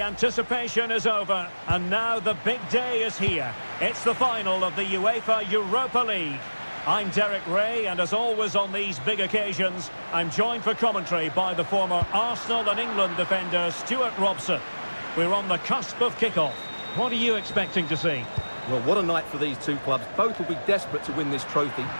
anticipation is over, and now the big day is here. It's the final of the UEFA Europa League. I'm Derek Ray, and as always on these big occasions, I'm joined for commentary by the former Arsenal and England defender Stuart Robson. We're on the cusp of kickoff. What are you expecting to see? Well, what a night for these two clubs. Both will be desperate to win this trophy.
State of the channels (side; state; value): both; inverted; correlation -1.00